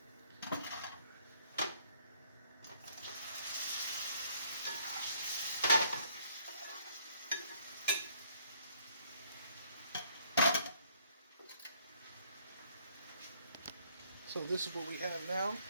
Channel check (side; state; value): both; inverted; correlation -0.64